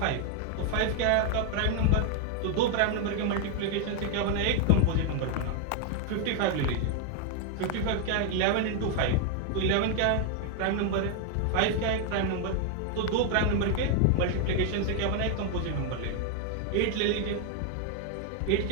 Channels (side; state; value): both; different; correlation 0.00